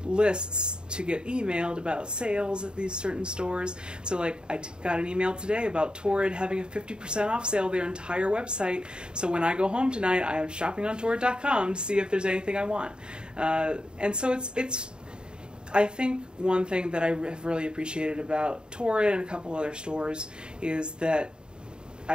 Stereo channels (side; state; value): left; late; 0.049 ms